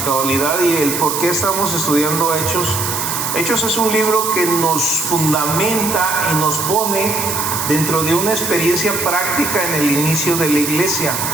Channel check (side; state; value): right; noise; hiss, 3 dB below the sound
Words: cabalidad y el por qué estamos estudiando Hechos. Hechos es un libro que nos fundamenta y nos pone dentro de una experiencia práctica en el inicio de la iglesia,